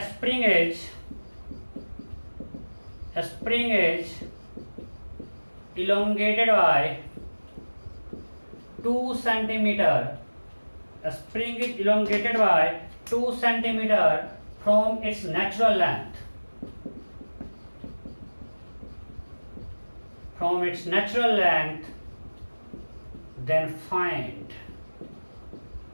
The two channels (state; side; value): inverted; both; correlation -1.00